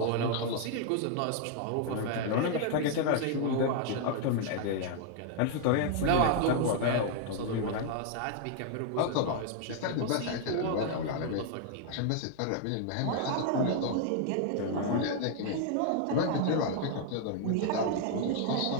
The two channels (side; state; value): both; different; correlation 0.00